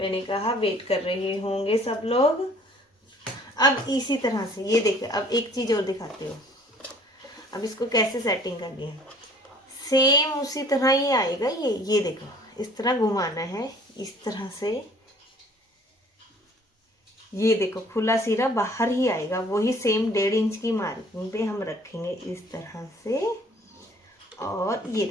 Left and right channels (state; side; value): normal; both; correlation 0.54